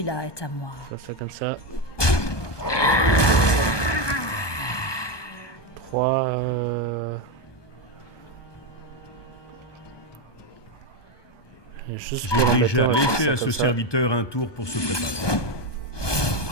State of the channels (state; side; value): late; right; 1.2 ms